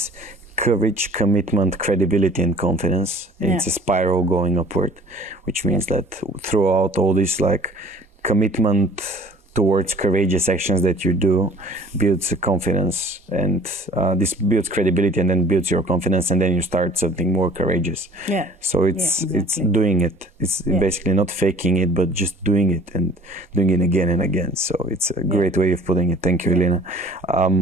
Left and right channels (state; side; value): normal; both; correlation 0.49